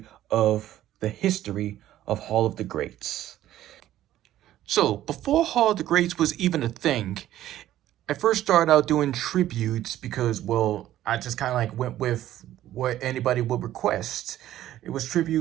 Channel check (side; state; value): left; quieter; 13.2 dB